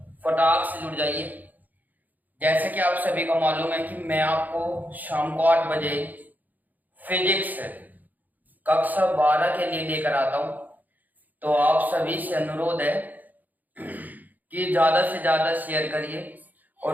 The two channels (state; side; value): late; left; 0.082 ms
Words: फटाक से जुड़ जाइए। जैसा कि आप सभी को मालूम है कि मैं आपको शाम को 8 बजे फिजिक्स कक्षा 12 के लिए लेकर आता हूं। तो आप सभी से अनुरोध है कि ज्यादा से ज्यादा शेयर करिए